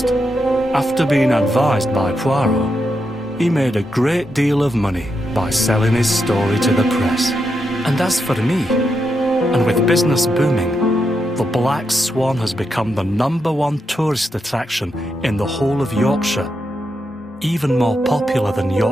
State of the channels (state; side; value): normal; both; correlation 0.84